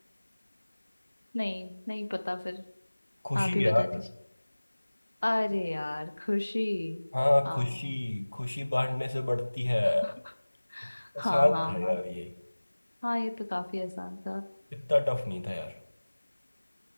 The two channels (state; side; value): inverted; both; correlation -1.00